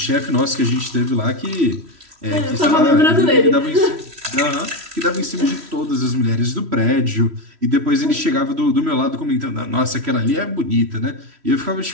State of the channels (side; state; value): left; late; 3.1 ms